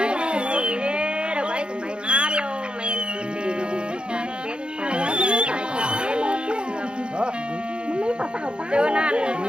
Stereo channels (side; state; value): left; late; 0.051 ms